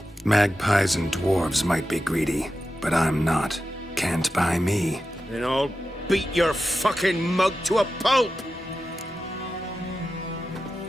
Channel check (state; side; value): normal; both; correlation 0.92